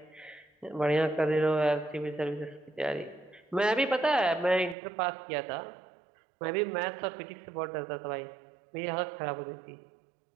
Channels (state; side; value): drops out; left; at 4.8 s